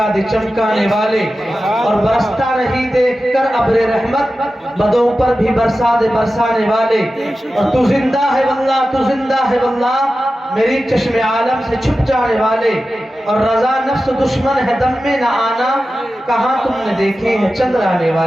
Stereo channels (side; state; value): both; normal; correlation 0.93